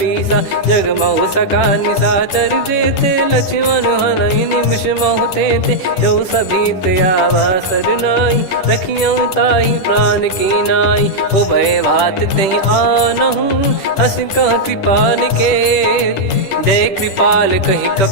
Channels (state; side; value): late; right; 10 ms